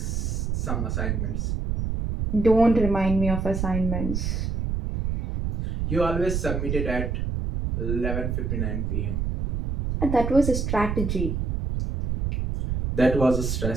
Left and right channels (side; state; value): right; noise; rumble, 1 dB below the sound